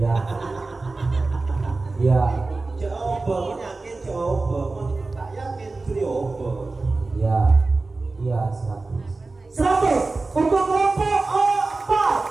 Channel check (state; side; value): quieter; left; 3.5 dB